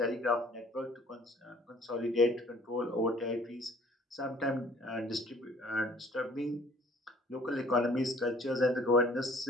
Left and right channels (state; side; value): normal; both; correlation 0.55